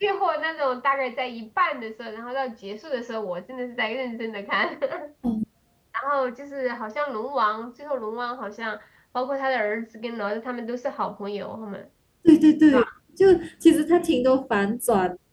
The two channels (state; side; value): identical; both; correlation 1.00